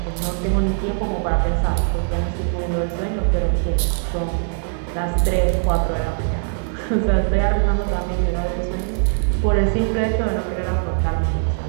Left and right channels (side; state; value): left; silent; 57 dB below the other